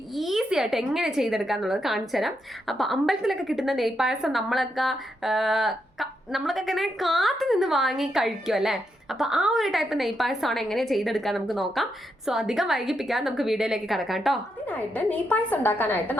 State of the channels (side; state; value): both; normal; correlation 0.82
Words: ഈസി ആയിട്ട് എങ്ങനെ ചെയ്തെടുക്കുക എന്നുള്ളത് കാണിച്ചു തരാം. അപ്പോൾ അമ്പലത്തിലൊക്കെ കിട്ടുന്ന നെയ്പായസം നമ്മളൊക്കെ ഇങ്ങനെ കാത്തു നിന്ന് വാങ്ങി കഴിക്കും അല്ലേ. അപ്പോൾ ആ ഒരു ടൈപ്പ് നെയ്പായസമാണ് എങ്ങനെ ചെയ്തെടുക്കാൻ നമുക്ക് നോക്കാം. സോ അധികം വൈകിപ്പിക്കാൻ നമുക്ക് വീഡിയോയിലേക്ക് കിടക്കാം കേട്ടോ. അതിനായിട്ട് നെയ്പായസം ഉണ്ടാക്കാനായിട്ട്